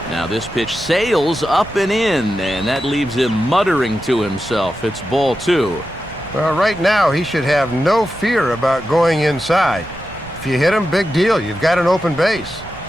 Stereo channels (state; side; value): noise; right; rumble, 18 dB below the sound